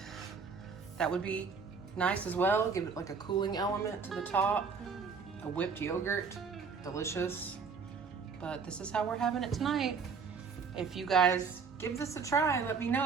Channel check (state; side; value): quieter; left; 5.5 dB